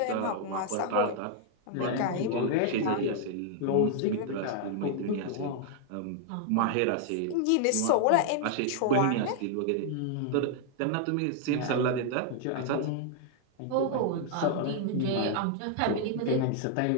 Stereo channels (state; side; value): different; both; correlation 0.00